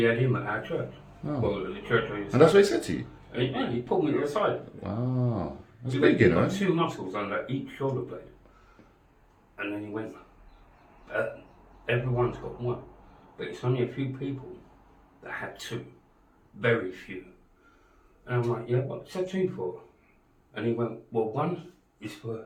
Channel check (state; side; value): identical; both; correlation 1.00